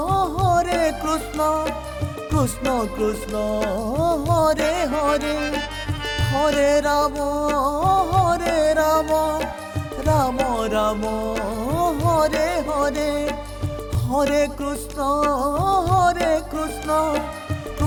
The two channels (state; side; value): identical; both; correlation 1.00